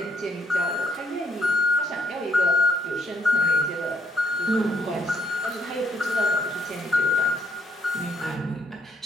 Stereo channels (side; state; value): both; normal; correlation 0.72